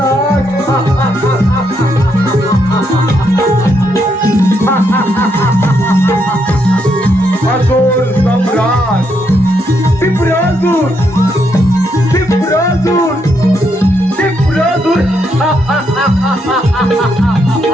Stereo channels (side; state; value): both; normal; correlation 0.77